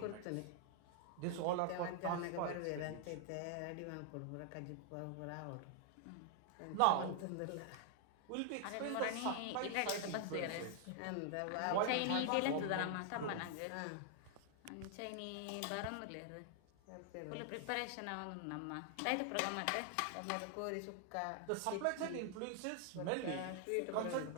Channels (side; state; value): both; different; correlation 0.00